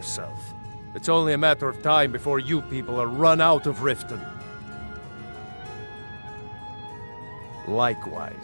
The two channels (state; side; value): inverted; both; correlation -1.00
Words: It's only a matter of time before you people are run out of Riften.